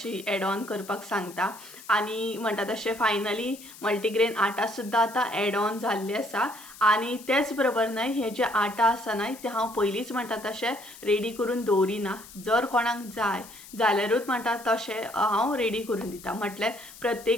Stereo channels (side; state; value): left; noise; hiss, 18 dB below the sound